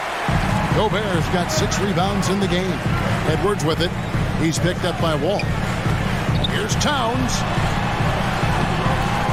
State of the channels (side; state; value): both; identical; correlation 1.00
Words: Gobert's got 6 rebounds in the game. Edwards with it. He's picked up by Wall. Here's Towns.